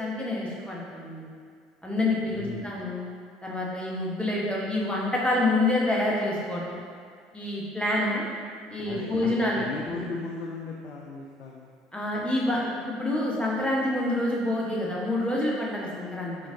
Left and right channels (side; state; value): both; normal; correlation 0.62